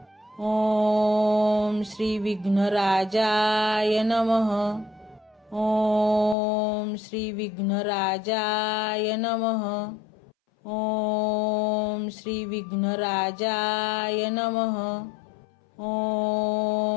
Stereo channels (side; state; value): right; drops out; at 6.4 s